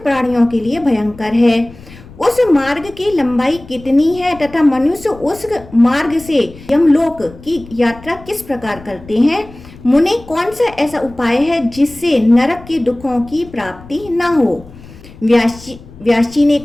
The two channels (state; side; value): noise; left; rumble, 20 dB below the sound